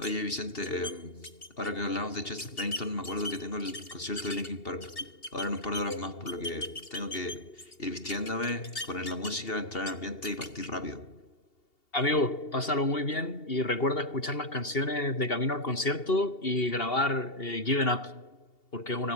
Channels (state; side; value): late; right; 2.8 ms